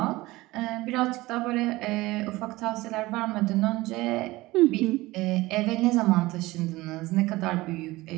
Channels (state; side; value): quieter; left; 19.7 dB